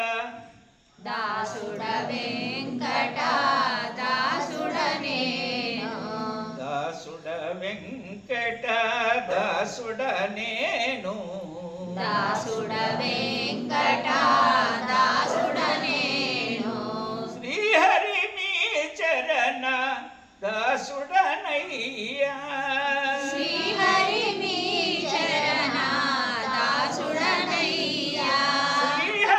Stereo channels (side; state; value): both; identical; correlation 1.00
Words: దాసుడ వెంకట దాసుడనే దాసుడ వెంకట దాసుడ నేను దాసుడ వెంకట దాసుడ నేను శ్రీహరి మీ చరణ దాసుడనయ్యా శ్రీహరి మీ చరణ దాసుడనయ్యా